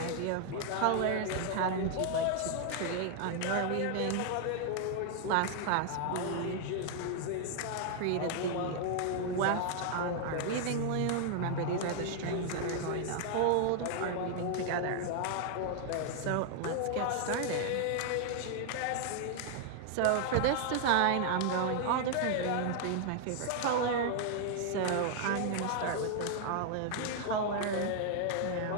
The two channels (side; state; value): both; different; correlation 0.00